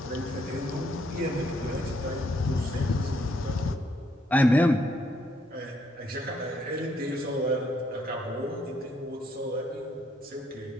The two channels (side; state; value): both; normal; correlation 0.72